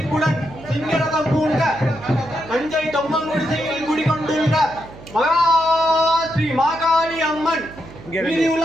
சிங்கரதம் பூண்ட தஞ்சை தொம்மங்குடிசையில் குடிகொண்டுள்ள மகா ஸ்ரீ மாகாளி அம்மன்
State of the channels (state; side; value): noise; right; hum, 18 dB below the sound